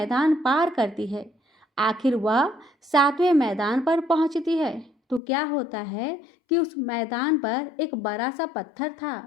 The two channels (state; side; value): drops out; right; at 5.2 s